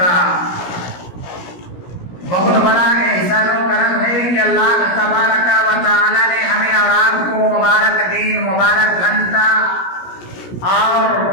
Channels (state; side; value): late; right; 17 ms